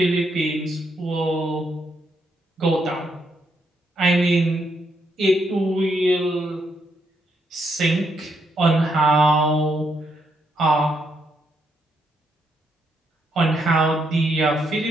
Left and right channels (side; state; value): both; normal; correlation 0.77